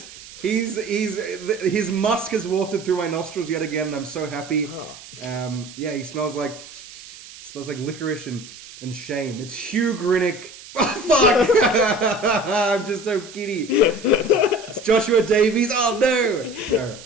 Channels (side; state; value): right; noise; hiss, 17 dB below the sound